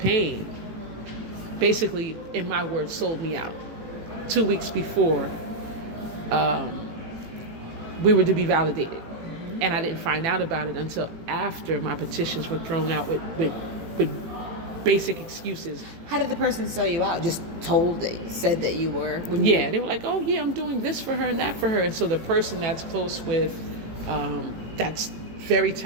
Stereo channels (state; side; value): late; left; 18 ms